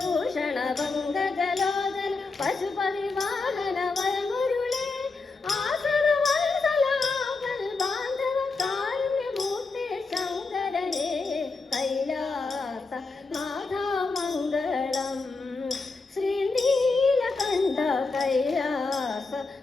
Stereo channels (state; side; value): quieter; right; 4.0 dB